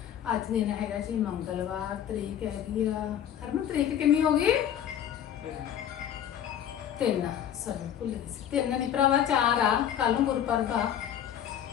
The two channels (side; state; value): right; quieter; 9.9 dB